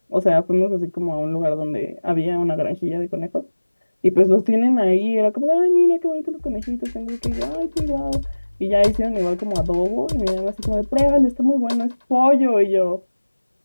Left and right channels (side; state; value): both; inverted; correlation -1.00